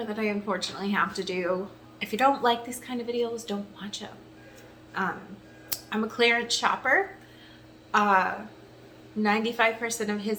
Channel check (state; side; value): identical; both; correlation 1.00